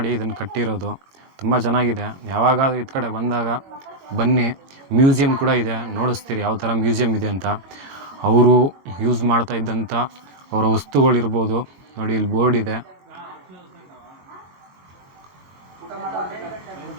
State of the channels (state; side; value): late; left; 22 ms